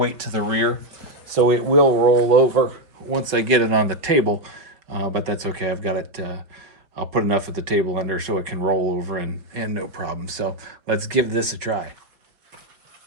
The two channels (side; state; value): left; late; 5.2 ms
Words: to the rear. So it will roll over once I get it on the table, but that's okay. I've got it, I'll put enough of the table under so it can roll over and no problem. So let's give this a try.